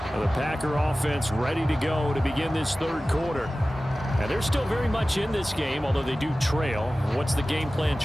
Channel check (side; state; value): both; normal; correlation 0.96